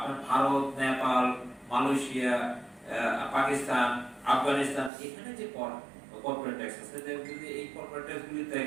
ভারত, নেপাল, মালয়েশিয়া, পাকিস্তান, আফগানিস্তান, এখানে যে কর্পোরেট ট্যাক্স আছে, যদি এই কর্পোরেট ট্যাক্সগুলিতে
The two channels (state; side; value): drops out; left; at 4.9 s